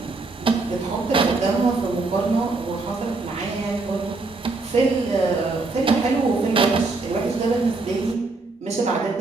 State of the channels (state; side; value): quieter; left; 3.6 dB